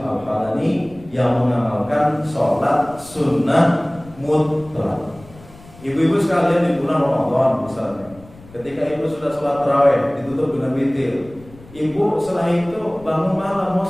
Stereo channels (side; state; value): left; noise; rumble, 22 dB below the sound